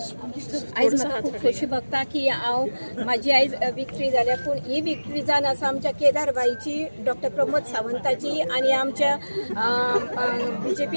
आयज म्हाका खूब खोशी भोगता की हांव म्हाजी आयज विक्ट्री जाल्या पूण ही विक्ट्री जावन आसा आमच्या केदार बाईची, डॉक्टर प्रमोद सावंताची आनी आमच्या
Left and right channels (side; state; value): both; inverted; correlation -1.00